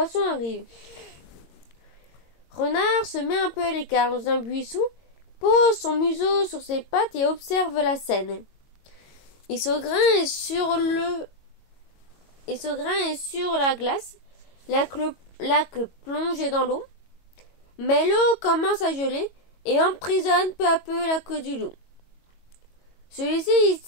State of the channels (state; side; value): late; right; 22 ms